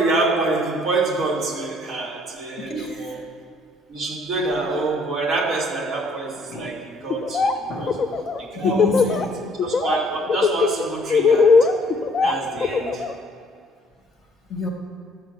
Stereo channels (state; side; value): normal; both; correlation 0.62